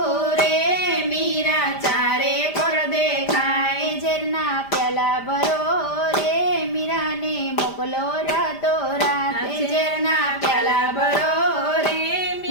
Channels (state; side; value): late; right; 5.0 ms